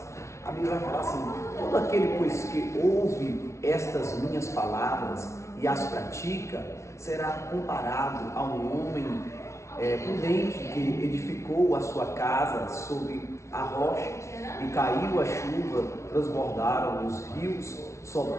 A Bíblia vai falar assim: todo aquele, pois, que ouve estas minhas palavras e as pratica, será comparado a um homem prudente que edificou a sua casa sobre a rocha, e caiu a chuva, transbordaram os rios,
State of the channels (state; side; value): late; right; 0.13 ms